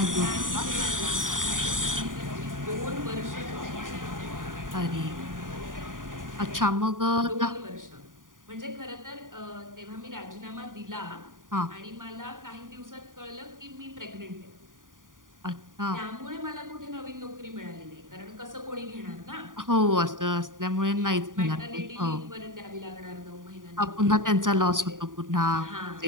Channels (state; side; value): late; left; 0.89 ms